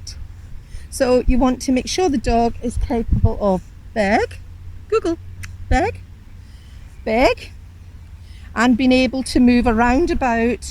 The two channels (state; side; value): identical; both; correlation 1.00